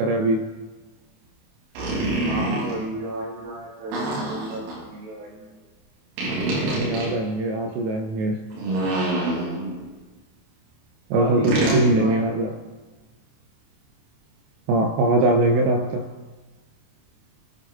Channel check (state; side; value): late; left; 28 ms